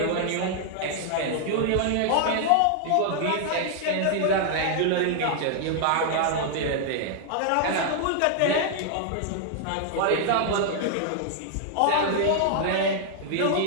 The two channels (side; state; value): both; different; correlation 0.00